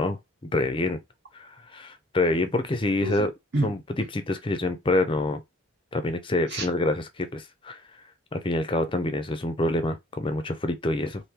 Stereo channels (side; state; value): both; normal; correlation 0.57